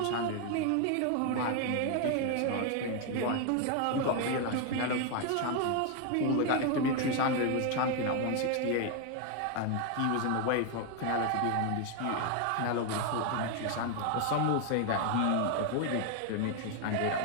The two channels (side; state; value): both; different; correlation 0.01